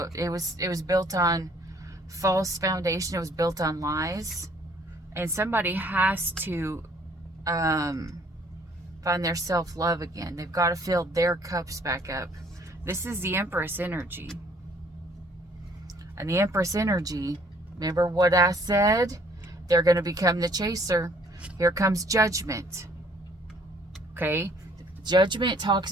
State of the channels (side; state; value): both; normal; correlation 0.60